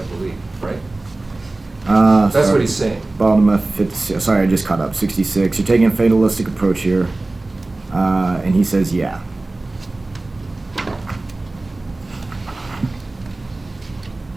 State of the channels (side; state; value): left; quieter; 3.0 dB